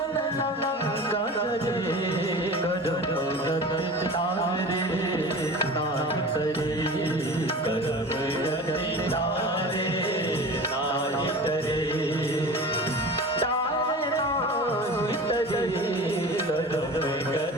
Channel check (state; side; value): normal; both; correlation 0.35